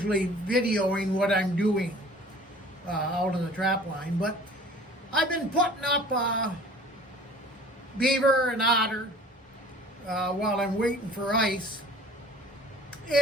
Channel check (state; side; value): normal; both; correlation 0.48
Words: videoing what I'm doing out on the trap line, but I've been putting up beaver and otter while I'm waiting for ice.